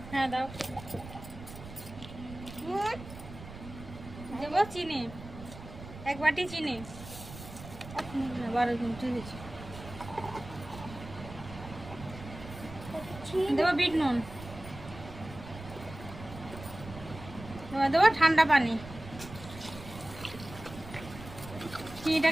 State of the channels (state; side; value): noise; right; rumble, 14 dB below the sound